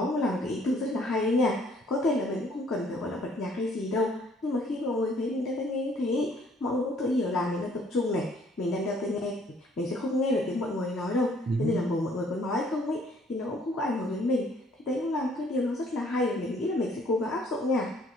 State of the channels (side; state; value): both; normal; correlation 0.61